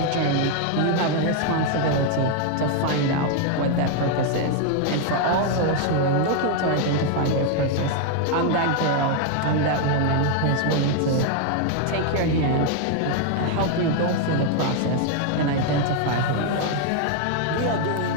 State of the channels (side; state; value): both; different; correlation 0.00